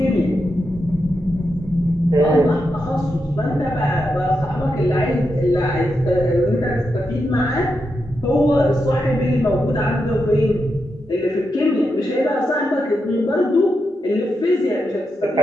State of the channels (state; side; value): normal; both; correlation 0.86